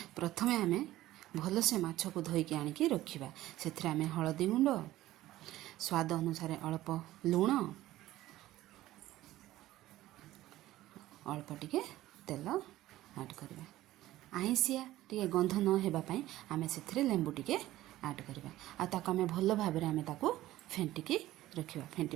प्रथमे आम भल से माछ को धोईकी आनिकी रखिबा। सेथिरे आम हळदी गुंड, स्वाद अनुसार अल्प लूण, अल्प टिके तेल ऐड करबा। आईसिया टिके गंध न हेबापई आमे सेथिरे लेंबू टिके ऐड करबा। आ ताको आमे भल भाबरे आमे ताको फेंटिकी रखिबा।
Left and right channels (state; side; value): quieter; left; 15.5 dB